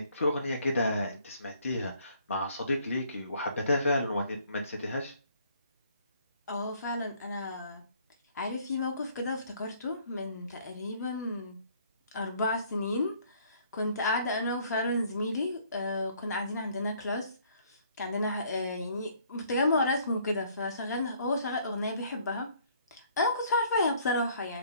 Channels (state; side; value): inverted; both; correlation -0.61